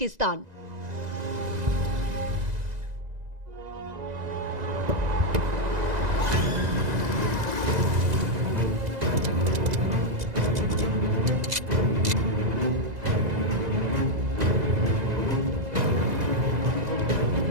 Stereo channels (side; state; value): left; late; 2.0 ms